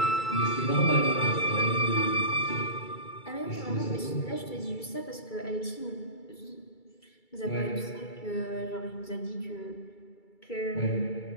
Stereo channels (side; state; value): right; late; 2.3 ms